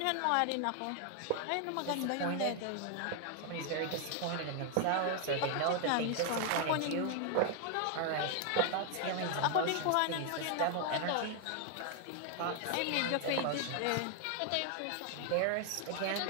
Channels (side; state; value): both; different; correlation 0.00